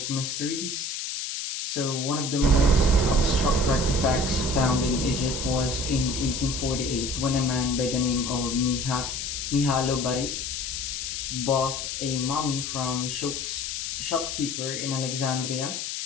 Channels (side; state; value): left; noise; hiss, 4 dB below the sound